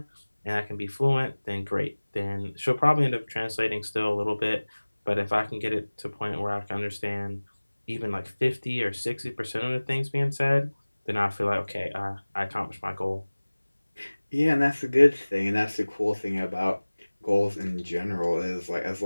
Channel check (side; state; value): both; inverted; correlation -1.00